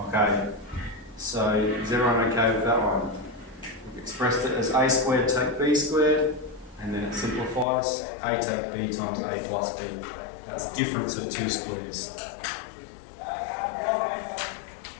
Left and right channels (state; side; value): drops out; right; at 7.7 s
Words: So is everyone okay with that one? We've expressed it as a squared take b squared, and then it simplifies a take b times a plus b. That's difference of 2 squares.